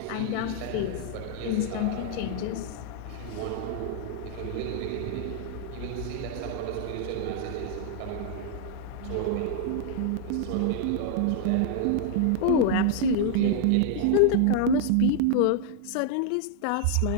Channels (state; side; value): different; both; correlation -0.01